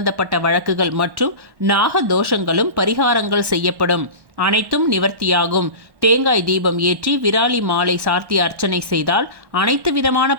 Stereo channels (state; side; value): late; left; 1.1 ms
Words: வழக்குகள் மற்றும் நாக தோஷங்களும் பரிகாரங்கள் செய்யப்படும். அனைத்தும் நிவர்த்தியாகும். தேங்காய் தீபம் ஏற்றி விராலி மாலை சார்த்தி அர்ச்சனை செய்தால் அனைத்து விதமான